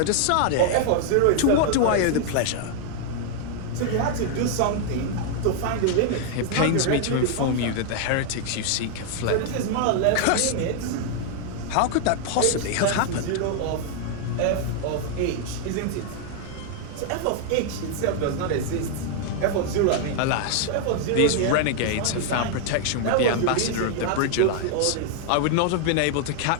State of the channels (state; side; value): different; both; correlation 0.00